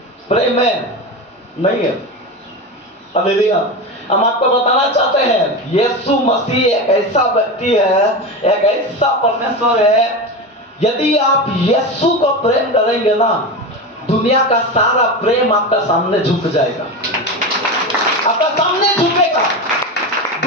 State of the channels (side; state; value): both; normal; correlation 0.21